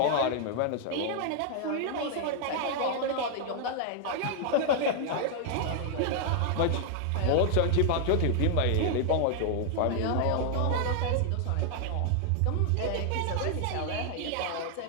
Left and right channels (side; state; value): both; different; correlation 0.00